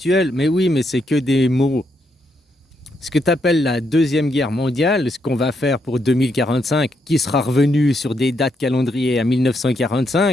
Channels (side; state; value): both; normal; correlation 0.78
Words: Mais oui, mais c'est que des mots. Ce que tu appelles la Deuxième Guerre mondiale, ce qu'on va faire pour 2045, qui sera revenu sur des dates calendrier à